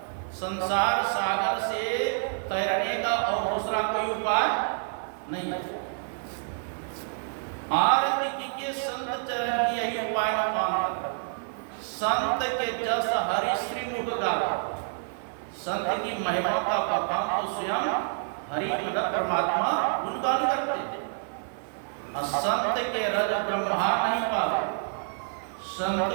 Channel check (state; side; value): silent; left; 59 dB below the other